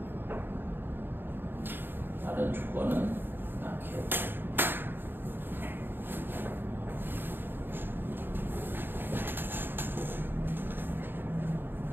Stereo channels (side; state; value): left; late; 0.097 ms